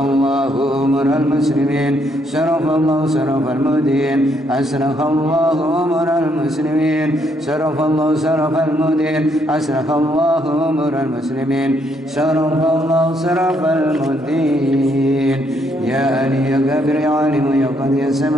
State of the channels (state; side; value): normal; both; correlation 0.72